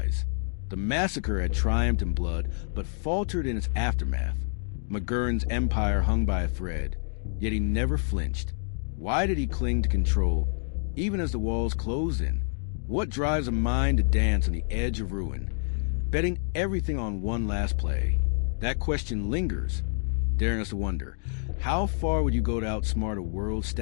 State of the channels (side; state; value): right; silent; 60 dB below the other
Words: The massacre had triumphed in blood, but faltered in its aftermath. McGurn's empire hung by a thread, yet he never flinched. Why did he cling to control, even as the walls closed in? What drives a mind to dance on the edge of ruin, betting everything on one last play? That question lingers, daring us to wonder, how far would you go to outsmart a world